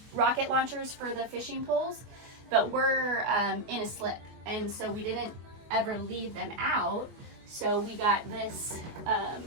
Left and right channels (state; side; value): late; left; 24 ms